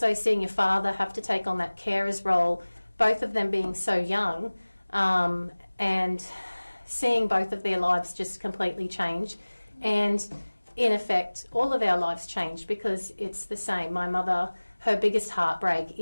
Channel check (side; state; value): both; inverted; correlation -1.00